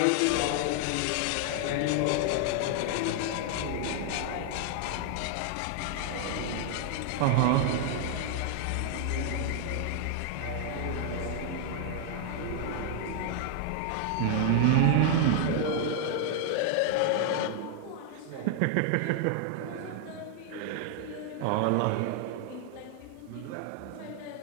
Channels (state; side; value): different; both; correlation 0.00